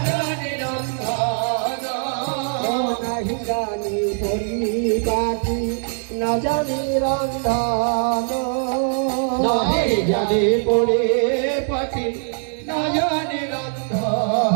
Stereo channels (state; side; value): silent; left; digital silence